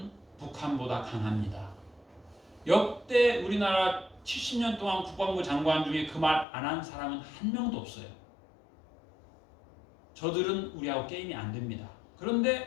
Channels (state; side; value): drops out; right; at 6.5 s